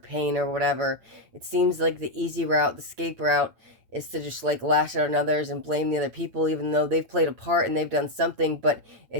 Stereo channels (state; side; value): late; left; 8.8 ms